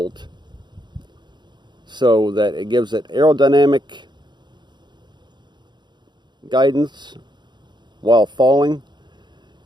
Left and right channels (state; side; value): late; left; 0.21 ms